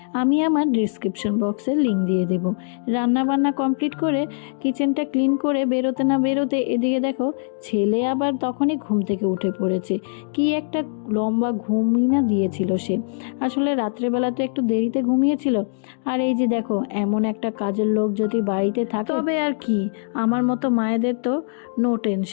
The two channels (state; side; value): silent; right; digital silence